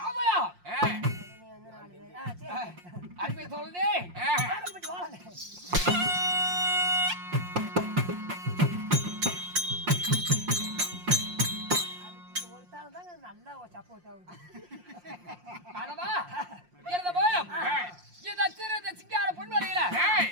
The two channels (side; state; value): left; late; 5.6 ms